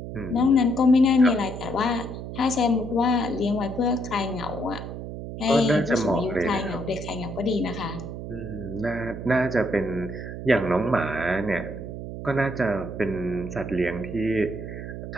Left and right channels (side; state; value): right; noise; hum, 8 dB below the sound